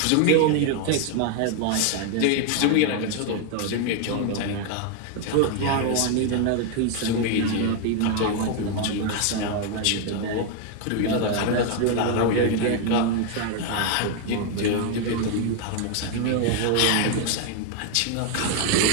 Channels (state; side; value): different; both; correlation 0.01